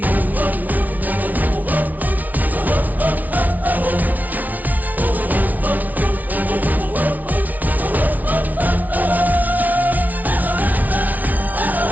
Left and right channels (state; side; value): late; left; 0.076 ms